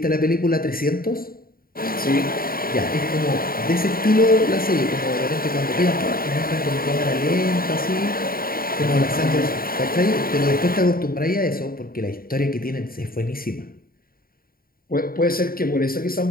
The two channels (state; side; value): late; right; 0.43 ms